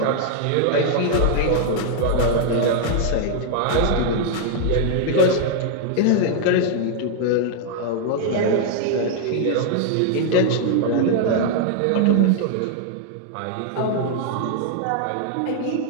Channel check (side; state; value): both; different; correlation 0.00